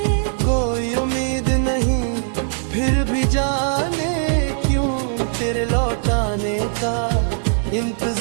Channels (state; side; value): silent; left; 59 dB below the other